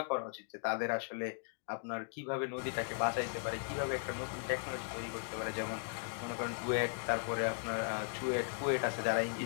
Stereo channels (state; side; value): silent; right; 53 dB below the other